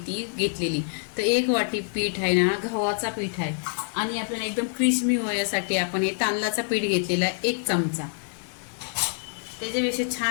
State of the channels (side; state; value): right; silent; digital silence